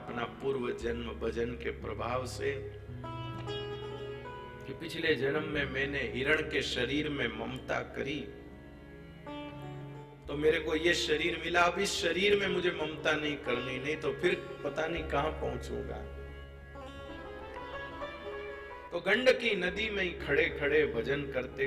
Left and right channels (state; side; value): identical; both; correlation 1.00